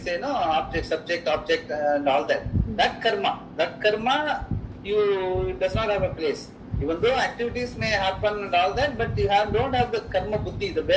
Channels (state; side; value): identical; both; correlation 1.00